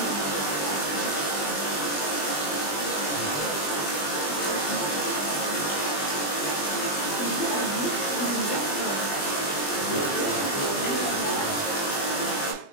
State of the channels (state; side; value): late; right; 20 ms